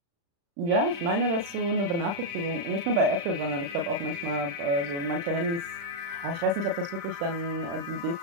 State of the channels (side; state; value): left; late; 35 ms